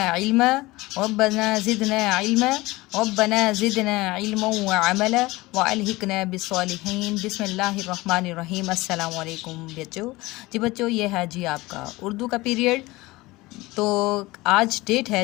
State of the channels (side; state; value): right; quieter; 20.7 dB